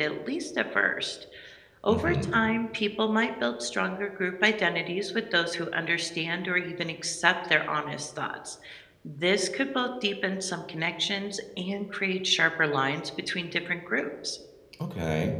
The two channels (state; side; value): identical; both; correlation 1.00